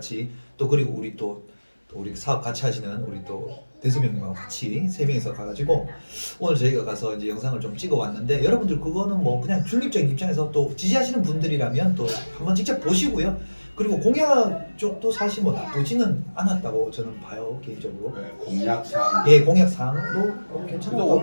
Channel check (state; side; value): inverted; both; correlation -1.00